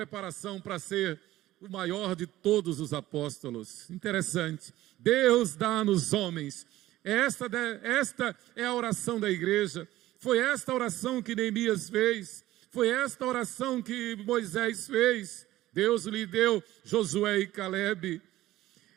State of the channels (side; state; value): left; quieter; 15.5 dB